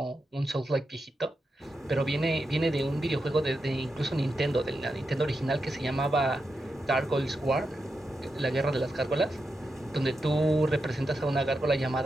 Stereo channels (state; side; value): normal; both; correlation 0.87